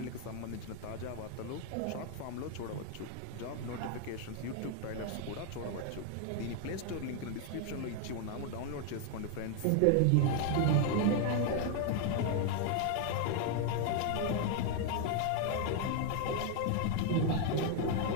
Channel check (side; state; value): both; different; correlation 0.00